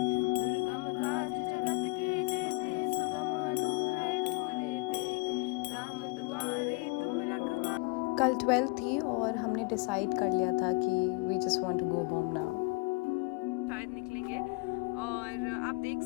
कल 12 थी और हमने डिसाइड कर लिया था कि we just want to go home now. शायद निकलेंगे और आप देख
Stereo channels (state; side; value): quieter; right; 30.0 dB